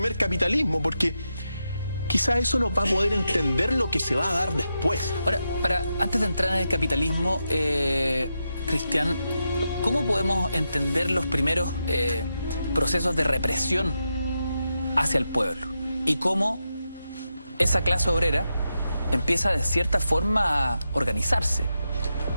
capitalismo, porque quizá eso nos va a poder entender lo que se va a dar después. Ahora, antes de entrar en el capitalismo, Cristian, ¿cómo podemos entender los primeros procesos de represión hacia el pueblo? Y cómo esa clase obrera empieza de cierta forma a organizarse.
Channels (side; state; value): both; inverted; correlation -0.87